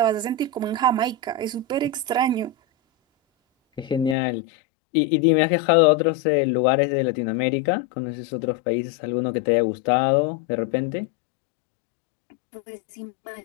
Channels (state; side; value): drops out; right; at 4.2 s